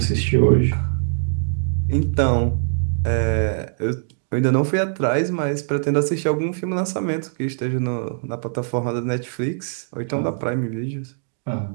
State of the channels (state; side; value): silent; left; digital silence